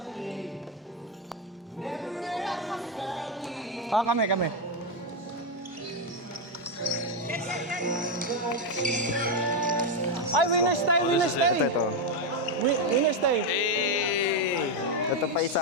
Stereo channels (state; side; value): normal; both; correlation 0.05